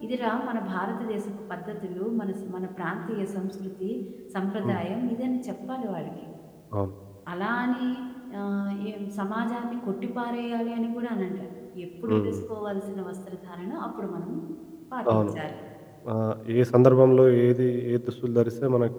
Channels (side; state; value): both; identical; correlation 1.00